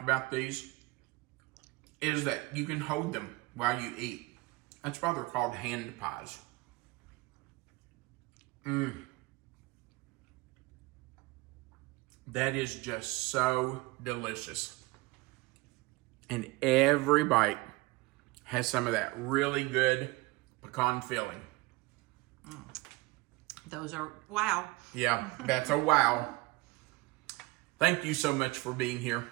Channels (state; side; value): quieter; left; 22.3 dB